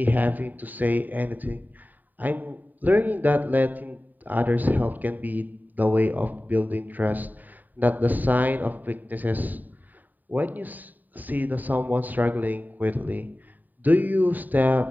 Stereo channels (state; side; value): late; left; 0.086 ms